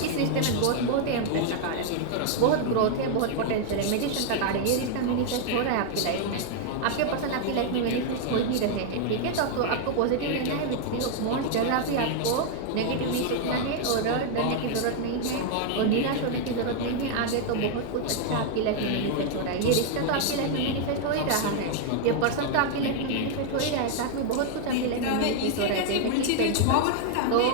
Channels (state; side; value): different; both; correlation 0.00